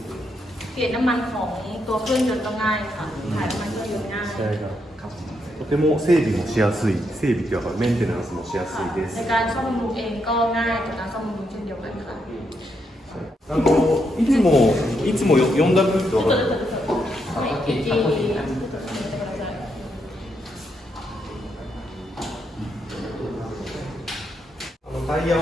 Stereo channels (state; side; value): normal; both; correlation 0.79